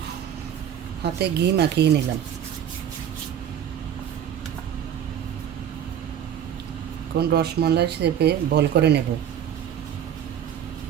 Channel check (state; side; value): quieter; left; 9.6 dB